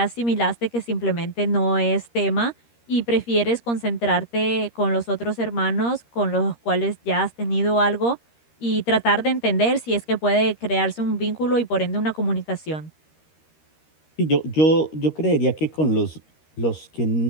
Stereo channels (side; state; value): right; late; 13 ms